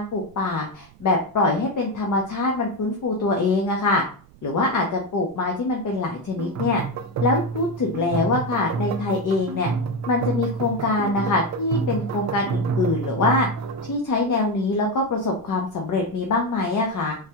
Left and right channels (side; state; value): right; noise; rumble, 25 dB below the sound